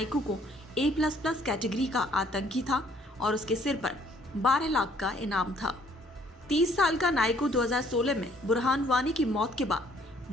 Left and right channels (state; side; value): normal; both; correlation 0.62